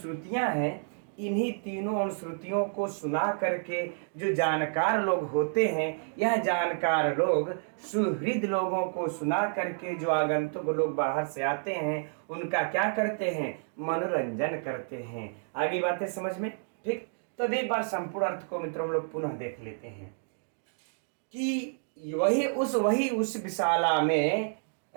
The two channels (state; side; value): silent; left; digital silence